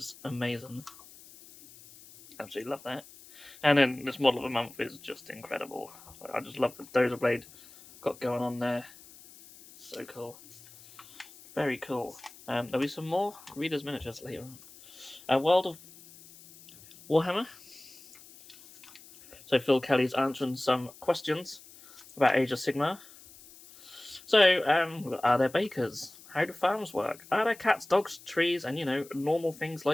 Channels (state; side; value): noise; left; hiss, 21 dB below the sound